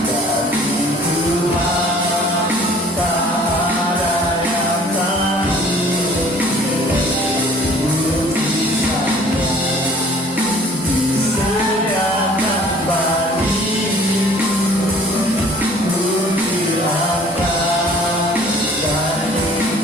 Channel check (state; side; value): normal; both; correlation 0.52